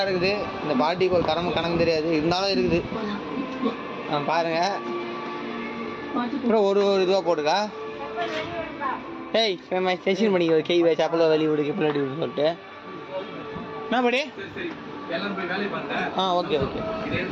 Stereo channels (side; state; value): both; identical; correlation 1.00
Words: இருக்குது. இந்த பாட்டிக்கு ஒரு கணக்கு தெரியாது, இருந்தாலும் இருக்குது. பாருங்கள். அப்புறம் ஒரு இதுவாக போட்டுக்கா. ஏய் செஷன் பண்ணிக்க கை வச்சு அப்பளோ வெளியே விடுக்கு பிள்ளாடி விடு சொல்லிட்டு என்ன படி. Okay okay.